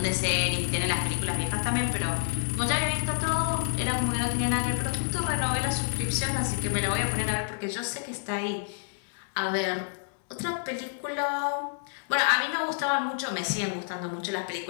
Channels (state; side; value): silent; right; digital silence